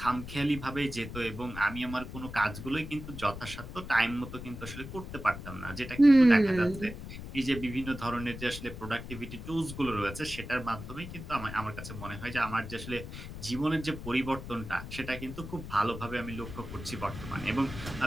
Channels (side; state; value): left; noise; rumble, 10 dB below the sound